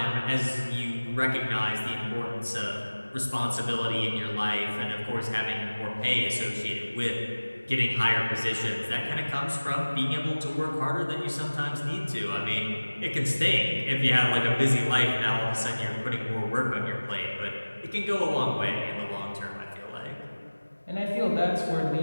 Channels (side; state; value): both; inverted; correlation -1.00